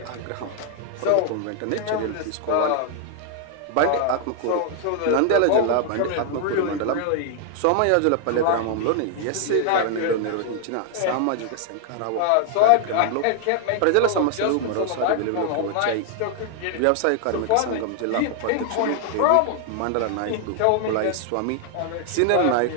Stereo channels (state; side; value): different; both; correlation 0.00